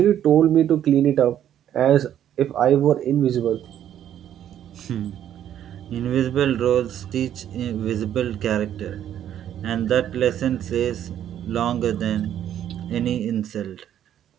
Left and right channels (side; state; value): left; quieter; 10.6 dB